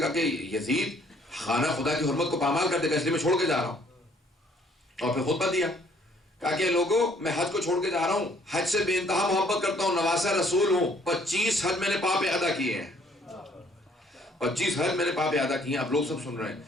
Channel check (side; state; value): both; normal; correlation 0.62